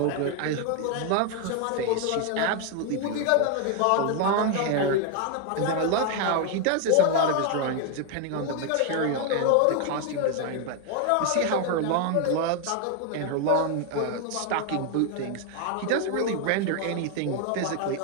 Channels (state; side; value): different; both; correlation 0.01